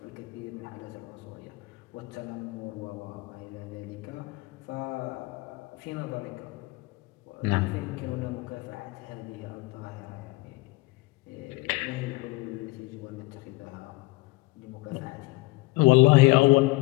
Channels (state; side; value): quieter; right; 22.8 dB